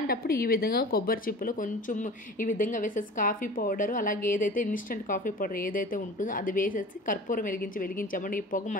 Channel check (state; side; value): normal; both; correlation 0.39